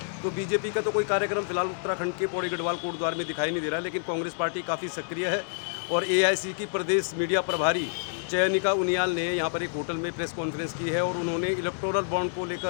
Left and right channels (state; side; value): silent; right; digital silence